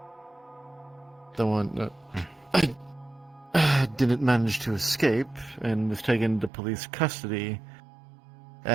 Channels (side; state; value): left; drops out; at 6.5 s